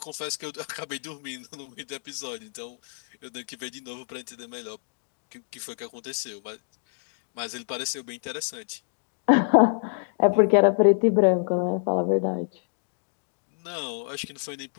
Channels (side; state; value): right; silent; 60 dB below the other